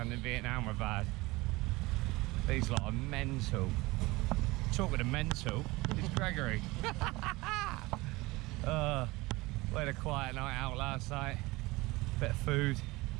and Vietnam were bad. These lot are mental. Talking of mental, it's Gregory. We had a quiet night out last night. Bit of food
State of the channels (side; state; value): left; quieter; 21.7 dB